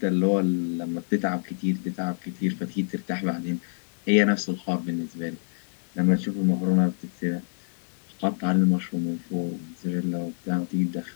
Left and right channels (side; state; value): right; silent; digital silence